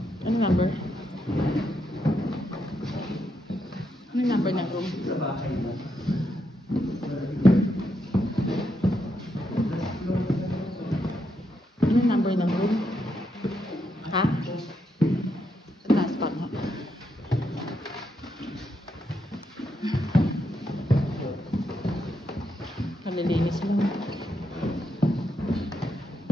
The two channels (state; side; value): normal; both; correlation 0.81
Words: Ano number? Ano number ng room? Ano number ng room? Ha? Sa taas pa nga. Kalilinis mo.